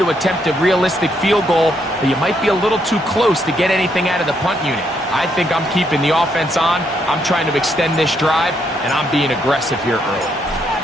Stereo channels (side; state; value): both; normal; correlation 0.75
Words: attempt a realistic field goal, but you might be a little too close to get anything out of the punt unit. I think I'm keeping the offense on. I'm trying to extend this drive, and I'm being aggressive here early.